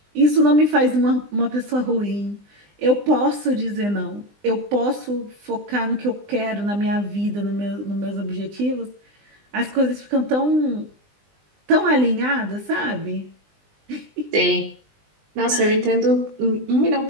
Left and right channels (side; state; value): left; late; 20 ms